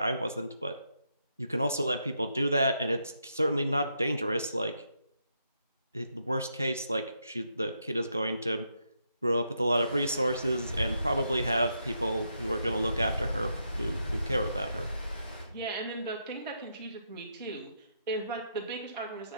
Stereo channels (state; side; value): inverted; both; correlation -0.80